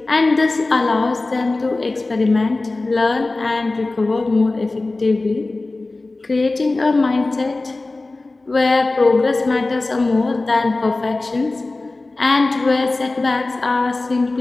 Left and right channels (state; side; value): quieter; right; 3.2 dB